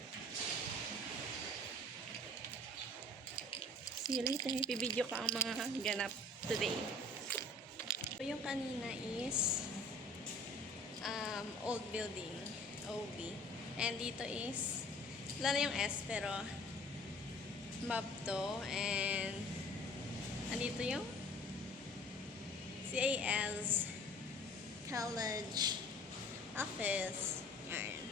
See you later. Bibidyo ko ang mga ganap today. So, yung kanina is old building, OB. And dito is, wala na yung S, pero map to. And andito yung CAS college office. Yan.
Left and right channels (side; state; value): both; normal; correlation 0.50